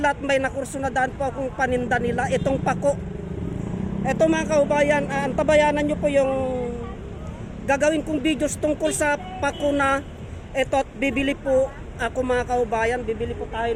at may nakurso na daan po akong paninda nila. Itong pako. Ito mga kaubayan, antabayanan nyo po yung gagawin kong videos tungkol sa pako na ito at bibili po ako mga kaubayan, bibili po tayo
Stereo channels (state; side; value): identical; both; correlation 1.00